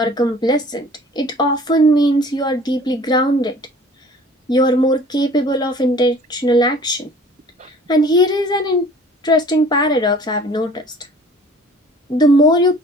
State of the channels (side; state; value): both; normal; correlation 0.49